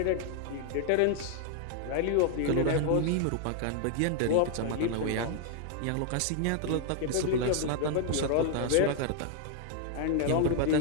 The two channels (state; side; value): different; both; correlation 0.00